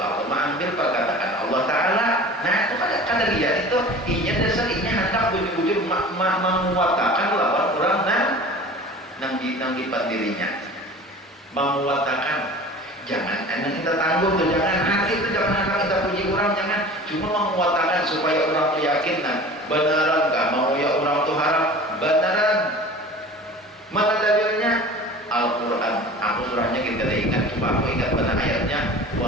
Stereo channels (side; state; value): both; normal; correlation 0.40